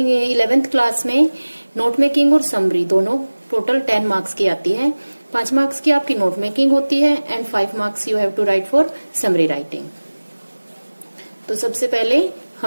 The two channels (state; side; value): inverted; both; correlation -1.00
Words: 11th class में note making और समरी दोनों टोटल 10 मार्क्स की आती है। 5 मार्क्स की आपकी नोट मेकिंग होती है and 5 marks you have to write for summary writing. तो सबसे पहले